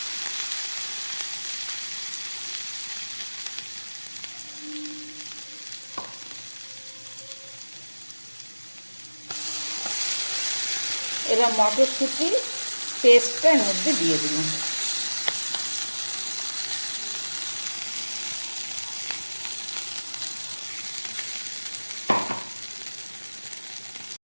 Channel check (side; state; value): both; inverted; correlation -1.00